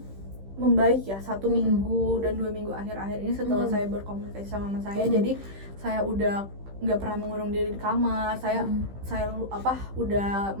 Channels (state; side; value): late; left; 15 ms